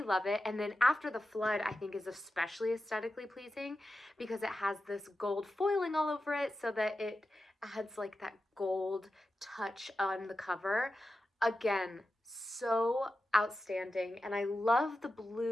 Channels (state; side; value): normal; both; correlation 0.92